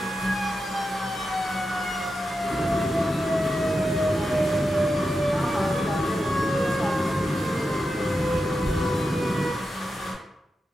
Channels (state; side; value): normal; both; correlation 0.89